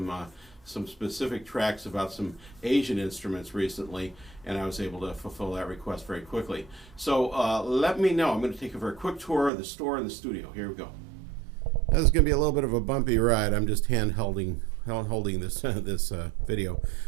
specific tracks about some Asian instruments recently, and I was able to fulfill that request very quickly. So let me know. I'm going to take a very quick tour of the store and the studio. Here we go. This is going to be a little bit of a bumpy ride. I'm just holding this video,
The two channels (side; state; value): left; drops out; at 9.5 s